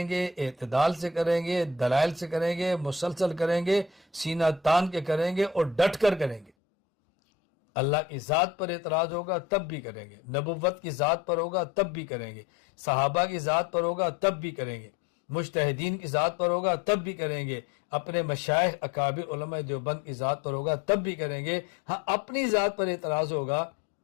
گے، اعتدال سے کریں گے، دلائل سے کریں گے، مسلسل کریں گے، سینہ تان کے کریں گے اور ڈٹ کر کریں گے۔ اللہ کی ذات پر اعتراض ہوگا تب بھی کریں گے، نبوت کی ذات پر ہوگا تب بھی کریں گے، صحابہ کی ذات پر ہوگا تب بھی کریں گے، مجتہدین کی ذات پر ہوگا تب بھی کریں گے، اپنے مشائخ اکابر علماء دیوبند کی ذات پر ہوگا تب بھی کریں گے۔ ہاں اپنی ذات پر اعتراض ہوگا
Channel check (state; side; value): drops out; right; at 6.5 s